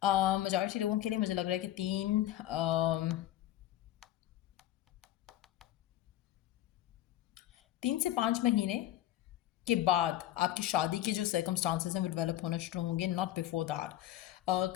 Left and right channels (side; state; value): right; quieter; 13.5 dB